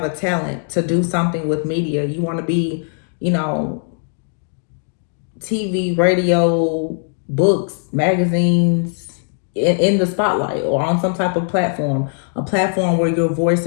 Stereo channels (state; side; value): silent; right; digital silence